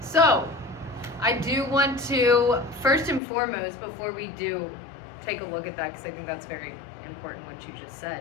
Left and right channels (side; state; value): right; drops out; at 3.2 s